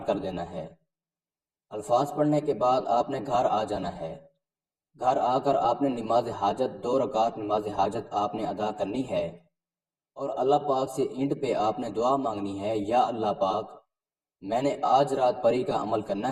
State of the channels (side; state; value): both; identical; correlation 1.00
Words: کر دینا ہے۔ الفاظ پڑھنے کے بعد آپ نے گھر آ جانا ہے۔ گھر آ کر آپ نے نماز حاجت 2 رکعت نماز حاجت آپ نے ادا کرنی ہے، اور اللہ پاک سے اینڈ پہ آپ نے دعا مانگنی ہے، یا اللہ پاک میں نے آج رات پری کا عمل